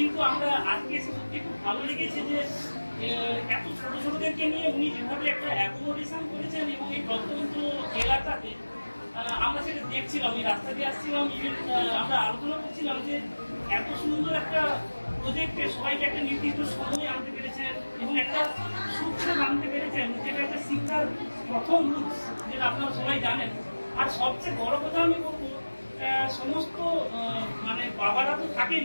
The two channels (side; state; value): both; inverted; correlation -1.00